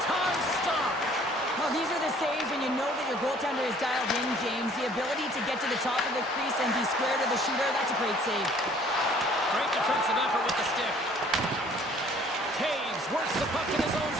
stop. Well, these are the saves when you know that your goaltender is dialed in, James. The ability to get to the top of the crease and be square to the shooter, that's a great save. Great defensive effort with the stick. Taves works the puck in his own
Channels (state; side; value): normal; both; correlation 0.56